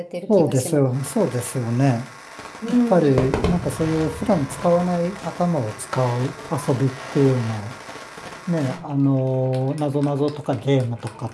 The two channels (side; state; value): both; identical; correlation 1.00